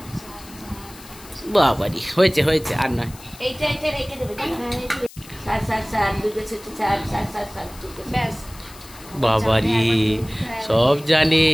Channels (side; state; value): left; noise; hiss, 20 dB below the sound